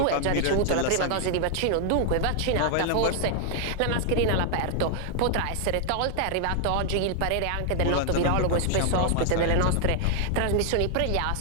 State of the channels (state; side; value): different; both; correlation 0.00